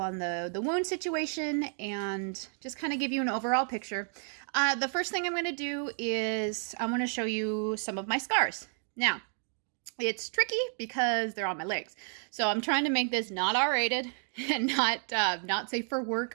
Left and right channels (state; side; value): silent; left; 57 dB below the other